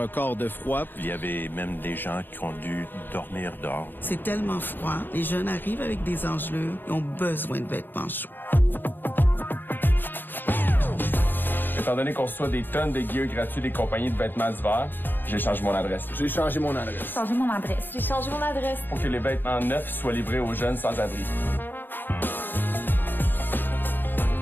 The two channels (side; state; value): right; late; 0.094 ms